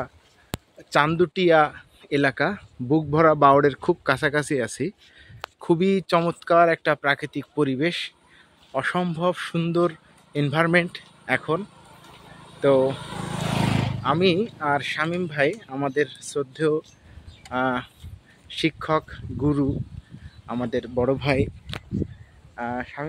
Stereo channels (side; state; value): both; identical; correlation 1.00